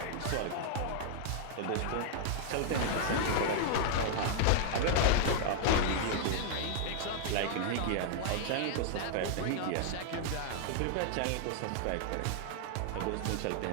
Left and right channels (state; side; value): different; both; correlation 0.00